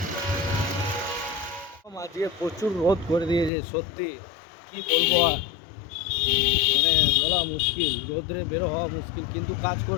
আজকে প্রচুর রোদ করে দিয়েছে, সত্যি কি বলবো আর, মানে বলা মুশকিল, রোদ্রে বেরো হওয়া মুশকিল, কিন্তু কাজ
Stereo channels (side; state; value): right; drops out; at 3.5 s